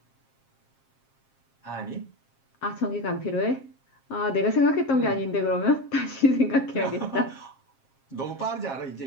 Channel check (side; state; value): right; late; 7.5 ms